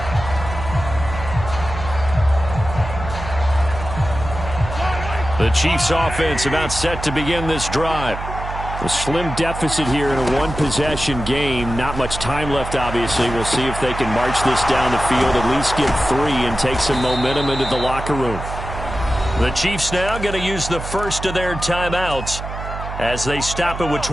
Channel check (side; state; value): right; noise; hum, 8 dB below the sound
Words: The Chiefs offense about set to begin this drive. A slim deficit here in a one-possession game. Not much time left, obviously. We'll see if they can march this down the field, at least get 3 and take some momentum into the locker room. The Chiefs now going to use the first of their timeouts as they stop it with